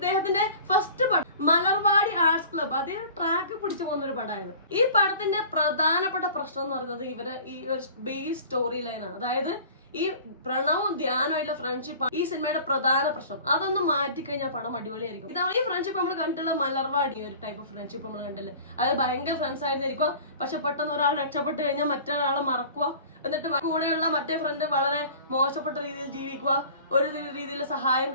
ഫസ്റ്റ് പടം മലർവാടി ആർട്സ് ക്ലബ്, അതേ ട്രാക്ക് പിടിച്ചു പോകുന്ന ഒരു പടമായത്. ഈ പടത്തിന്റെ പ്രധാനപ്പെട്ട പ്രശ്നം എന്ന് പറയുന്നത് ഇവരെ ഈ ഒരു ബേസ് സ്റ്റോറി ലൈനാണ്. അതായത് ഈ പ്രണവും ധ്യാനമായിട്ടുള്ള ഫ്രണ്ട്ഷിപ്പ് ഈ സിനിമയുടെ പ്രധാന പ്രശ്നം. അതൊന്ന് മാറ്റിക്കഴിഞ്ഞാൽ പടം അടിപൊളിയായിരിക്കും. ഇതാണ് ഈ ഫ്രണ്ട്ഷിപ്പ് നമ്മൾ കണ്ടിട്ടുള്ള മലർവാടി ഒരു ടൈപ്പ് ഓഫ് ഫ്രണ്ട്ഷിപ്പ് നമ്മൾ കണ്ടില്ലേ. അത് ഭയങ്കര ഫ്രണ്ട്സ് ആയിരുന്നിരിക്കുക, പക്ഷെ പെട്ടെന്ന് ഒരാൾ രക്ഷപ്പെട്ട് കഴിഞ്ഞാൽ മറ്റൊരാളെ മറക്കുക, എന്നിട്ട് കൂടെയുള്ള മറ്റേ ഫ്രണ്ട് വളരെ മോശപ്പെട്ട രീതിയിൽ ജീവിക്കുക, ഒരു രീതിയിൽ സഹായം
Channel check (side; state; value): both; inverted; correlation -0.43